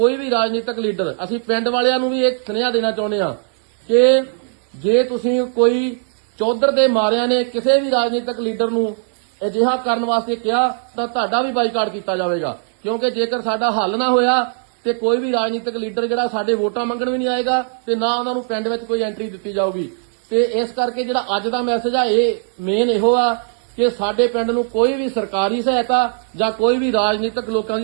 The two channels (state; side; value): silent; left; digital silence